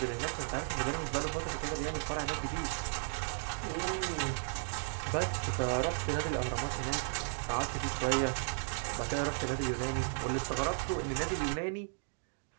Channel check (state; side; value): silent; left; digital silence